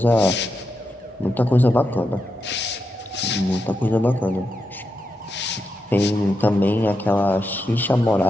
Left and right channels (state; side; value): normal; both; correlation 0.86